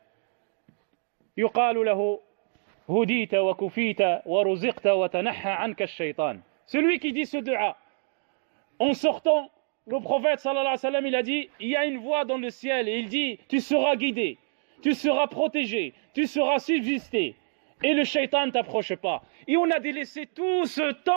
yuqalu lahu, hudita wa kufita wa ruziqta wa tanaha anka ash-shaytan. Celui qui dit ce dua, en sortant, le prophète sallallahu alayhi wa sallam, il a dit, il y a une voix dans le ciel, et il dit, tu seras guidé, tu seras protégé, tu seras subsisté, et le shaitan t'approche pas. Et on a délaissé tout ce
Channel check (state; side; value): silent; left; 60 dB below the other